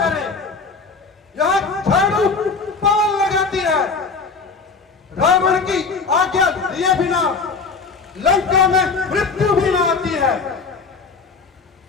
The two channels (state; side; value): quieter; right; 4.6 dB